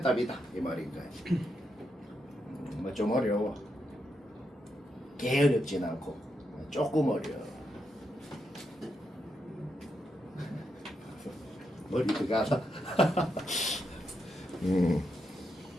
답이다. 이 말인 거야. 뭐 좀 어려워. 개 어렵진 않고 조금 어려워. 머리가 가다.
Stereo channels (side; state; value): both; normal; correlation 0.83